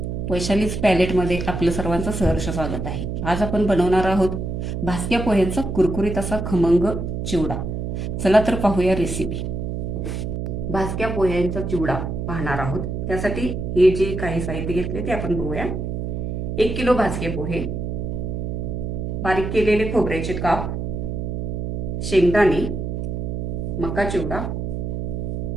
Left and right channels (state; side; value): noise; right; hum, 3 dB below the sound